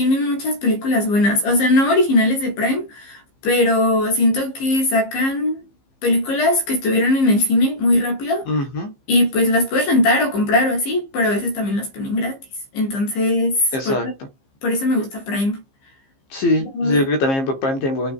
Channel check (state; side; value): late; right; 15 ms